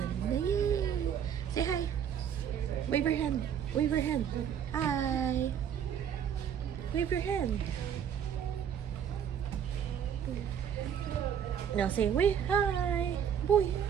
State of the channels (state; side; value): quieter; left; 8.6 dB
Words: Yay! Say hi. Wave your hand. Wave your hand. Hi. Wave your hand. Now say wave. Hi. Boy.